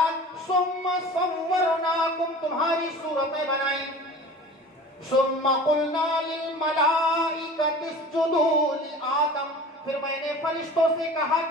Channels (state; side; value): normal; both; correlation 0.40